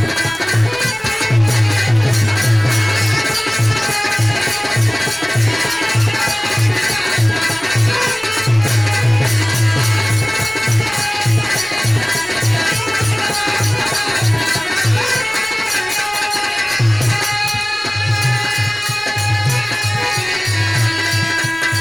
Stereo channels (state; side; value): noise; right; rumble, 25 dB below the sound